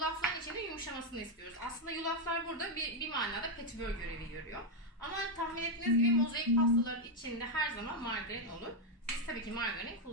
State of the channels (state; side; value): normal; both; correlation 0.02